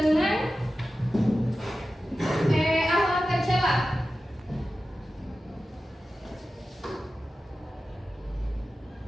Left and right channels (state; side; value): normal; both; correlation 0.94